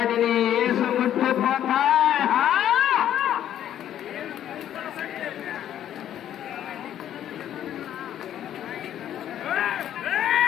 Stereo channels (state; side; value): quieter; right; 11.0 dB